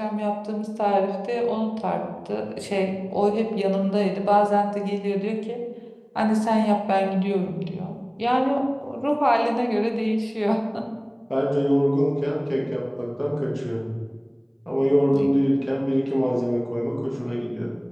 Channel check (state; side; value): identical; both; correlation 1.00